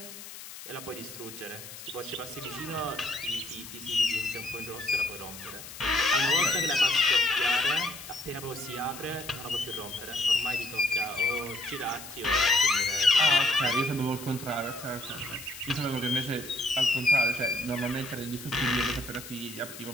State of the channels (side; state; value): left; noise; hiss, 13 dB below the sound